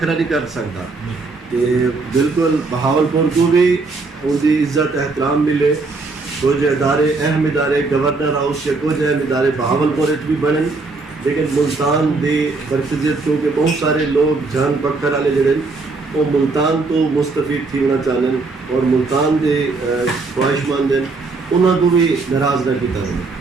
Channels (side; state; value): left; quieter; 3.8 dB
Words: نہیں کر سکتا. کہ بالکل بہاولپور کو بھی ان کی عزت احترام ملے. کچھ ادارے اہم ادارے گورنر ہاؤس کے کچھ اہم ادارے بہاولپور بھی بنن, لیکن ملتان دی مرکزیت کیونکہ بہت سارے لوگ جان پکڑ والے جڑے وہ ملتان تو مستفید تھی ہونا چاہن اور ملتان دے خواہش مند ہیں انہوں کو بھی ناراض نہ کیتا ہے.